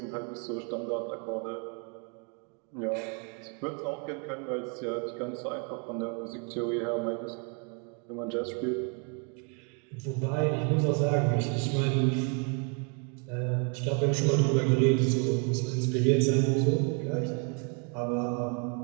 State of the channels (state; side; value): quieter; left; 37.6 dB